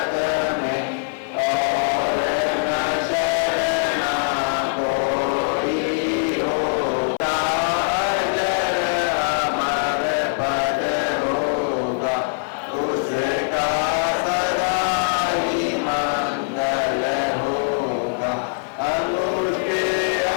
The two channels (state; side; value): silent; right; 64 dB below the other